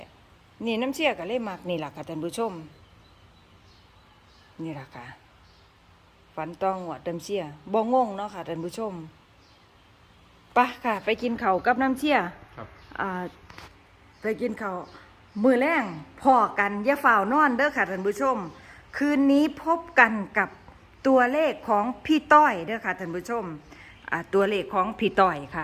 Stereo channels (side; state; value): both; identical; correlation 1.00